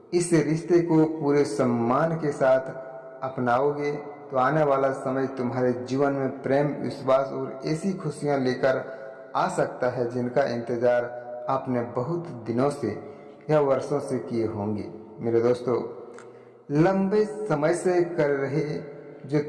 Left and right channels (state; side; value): identical; both; correlation 1.00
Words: इस रिश्ते को पूरे सम्मान के साथ अपनाओगे, तो आने वाला समय तुम्हारे जीवन में प्रेम, विश्वास और ऐसी खुशियां लेकर आ सकता है जिनका इंतजार आपने बहुत दिनों से या वर्षों से किए होंगे। मेरे दोस्तों, लंबे समय से कर रहे जो